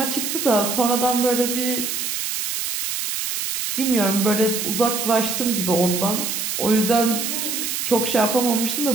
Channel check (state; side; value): noise; right; hiss, 2 dB below the sound